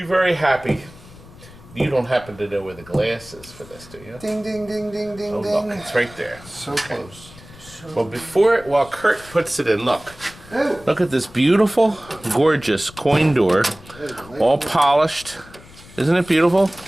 very happy. You don't happen to know where the glass is for this, do you? Ding, ding, ding, ding, ding, Oh, ding. look, it's right there. So close. Well, while Kurt puts it in, look at this beautiful, gorgeous coin door, all polished. Isn't it beautiful?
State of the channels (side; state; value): left; noise; rumble, 21 dB below the sound